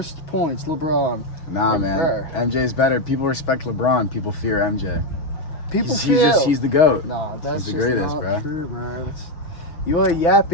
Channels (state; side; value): late; right; 6.3 ms